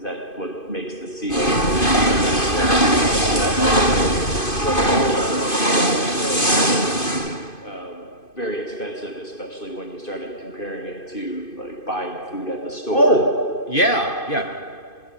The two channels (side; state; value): right; late; 2.5 ms